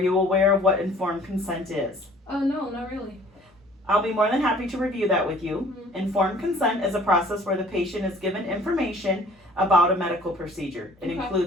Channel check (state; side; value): normal; both; correlation 0.54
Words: aware of what informed consent is? No, not really. I'll be more than happy to review that with you. Informed consent is a process where the patient is given information about a medical procedure. It